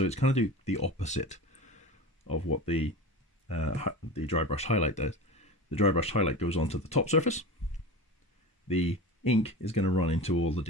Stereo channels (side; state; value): both; normal; correlation 0.31